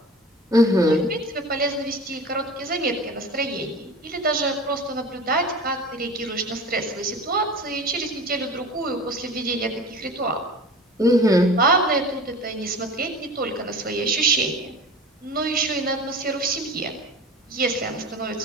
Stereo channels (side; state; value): both; normal; correlation 0.37